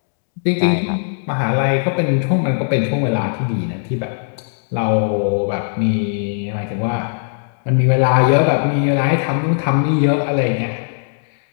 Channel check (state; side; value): silent; right; digital silence